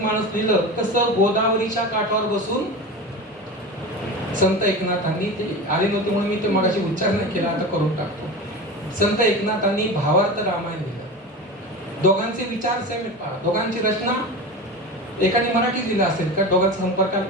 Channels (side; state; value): both; normal; correlation 0.28